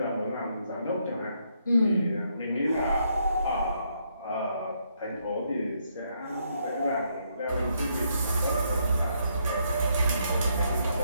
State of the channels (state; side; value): inverted; both; correlation -0.75